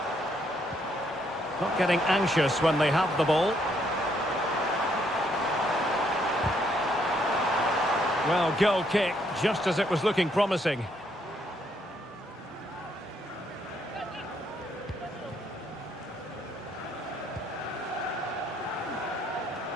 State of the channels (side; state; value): both; normal; correlation 0.72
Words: Not getting anxious when they have the ball. Well, goal kick, just as it was looking promising.